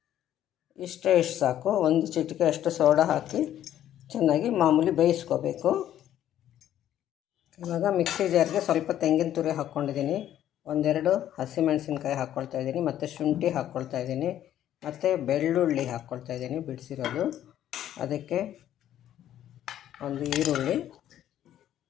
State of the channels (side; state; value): right; quieter; 11.6 dB